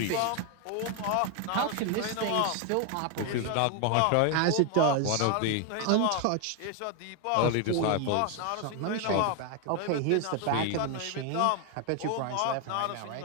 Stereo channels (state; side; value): different; both; correlation 0.01